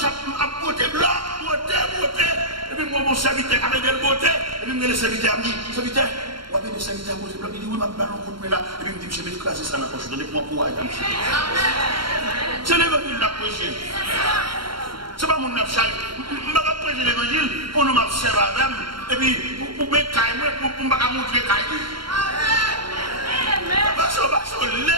à côté blanc, beauté, et puis moi, mon serviteur, avec des beautés, et puis le serviteur me dit, serviteur, on va bien le serviteur à côté blanc, il dit, oui, ma ballon coup de là, et puis il me dit, je vais écraser ça dans la poche, donnez-moi courage, monsieur. C'est l'évangile de la prêcher. C'est pas mon abchal. Je ne vais pas prêcher l'évangile pour nous m'observer avec, et puis pour me cailler, pour me montrer cailler. Parce que les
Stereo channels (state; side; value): late; left; 0.73 ms